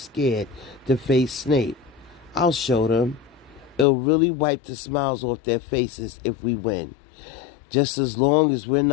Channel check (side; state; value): right; drops out; at 3.9 s